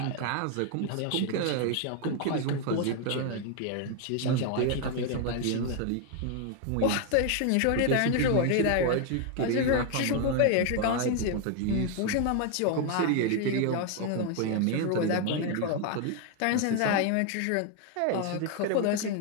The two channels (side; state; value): both; different; correlation 0.01